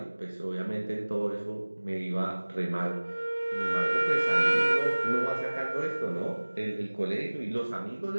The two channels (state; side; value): inverted; both; correlation -1.00